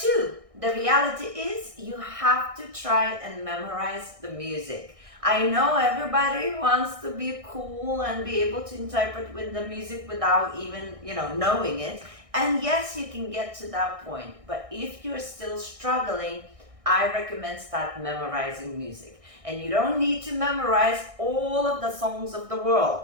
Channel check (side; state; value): left; late; 1.6 ms